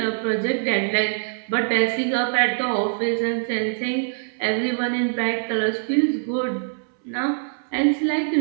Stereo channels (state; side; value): silent; left; 63 dB below the other